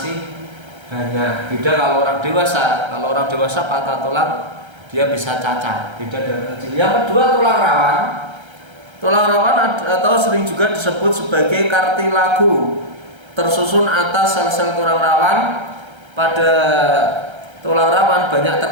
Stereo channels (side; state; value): left; late; 1.3 ms